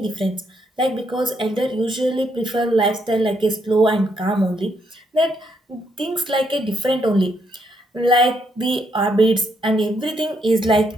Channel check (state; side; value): normal; both; correlation 0.75